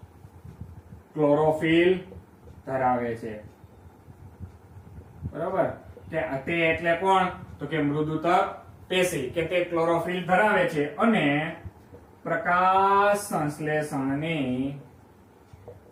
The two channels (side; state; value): both; identical; correlation 1.00